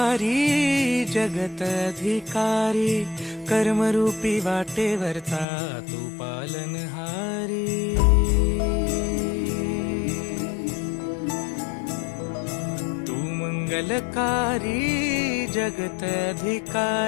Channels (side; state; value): right; drops out; at 5.5 s